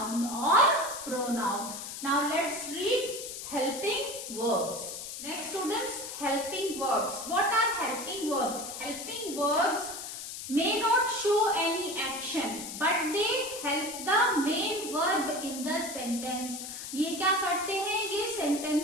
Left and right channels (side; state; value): left; noise; hiss, 8 dB below the sound